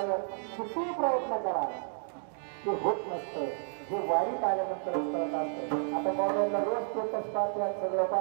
किती प्रयत्न करा ते होत नसतं. हे वारीत आल्यानंतरच करत असतं. आता मोबाईलला रोज स्टेटस टाकतात सगळं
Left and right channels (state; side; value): silent; left; digital silence